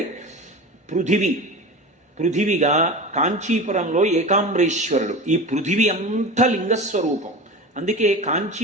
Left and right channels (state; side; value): normal; both; correlation 0.31